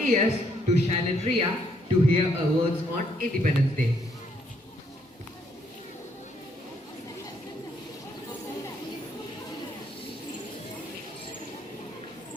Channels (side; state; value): both; normal; correlation 0.70